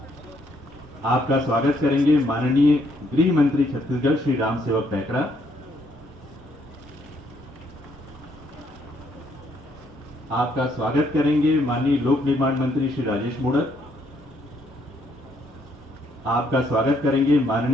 आपका स्वागत करेंगे माननीय गृह मंत्री छत्तीसगढ़ श्री राम सेवक पैकरा। आपका स्वागत करेंगे माननीय लोक निर्माण मंत्री श्री राजेश मूणत। आपका स्वागत करेंगे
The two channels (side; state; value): both; normal; correlation 0.70